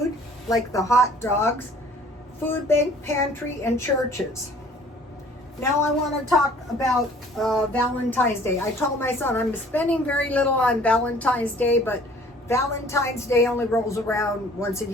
like the hot dogs, food bank, pantry, and churches. Now I want to talk about Valentine's Day. I told my son I'm spending very little on Valentine's Day, but Valentine's Day only rolls around once a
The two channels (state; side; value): normal; both; correlation 0.53